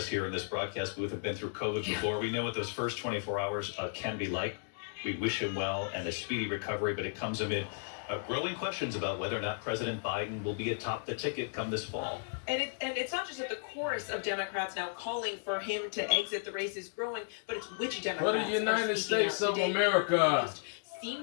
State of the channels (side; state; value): right; silent; digital silence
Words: here in this broadcast booth have been through COVID before. We know what those first 24 hours can be like. We wish him well and a speedy recovery, but it comes amid growing questions about whether or not President Biden will be atop the ticket come this fall. And it's not just that the chorus of Democrats now calling for him to exit the race is growing, but it's which Democrats. For the United States of America.